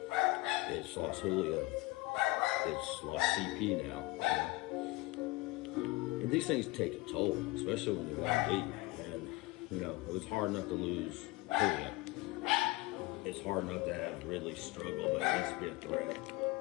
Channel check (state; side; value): quieter; right; 21.6 dB